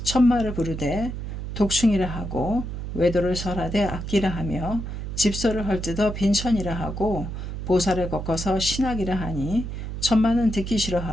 천마를 부르되 독충이라 하고 외도를 설하되 악기라 하며 집소를 헐뜯어 빈천이라 하고 보살을 꺾어서 신학이라 하니 천마는 듣기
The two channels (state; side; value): noise; right; hum, 6 dB below the sound